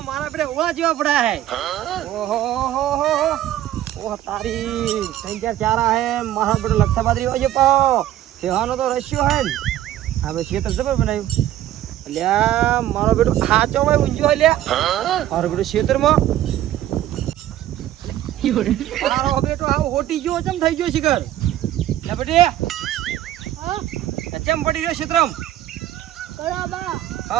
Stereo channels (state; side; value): quieter; left; 12.9 dB